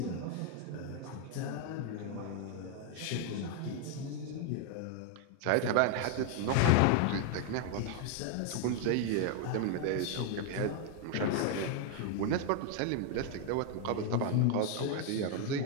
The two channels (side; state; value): both; different; correlation 0.00